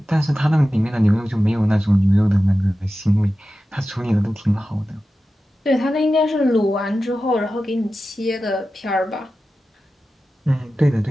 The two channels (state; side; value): normal; both; correlation 0.93